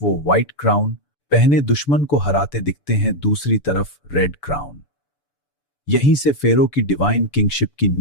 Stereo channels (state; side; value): late; right; 6.9 ms